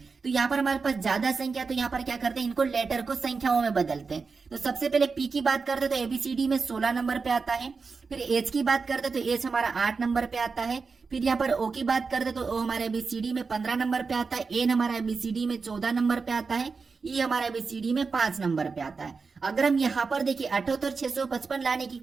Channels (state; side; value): quieter; left; 4.7 dB